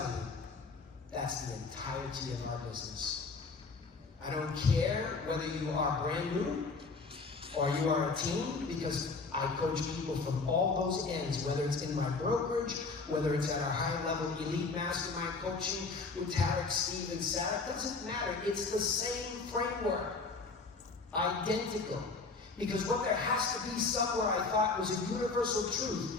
you, that's the entirety of our business. I don't care whether you are brand new or you are a team, because I coach people from all those ends, whether it's in my brokerage, whether it's at our high-level elite mastermind coaching with Tarek, Steve, and Sarah. It doesn't matter. It's the same framework. Identical. Because what there has to be somewhere, I thought, was a universal truth.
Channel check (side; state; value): right; quieter; 4.1 dB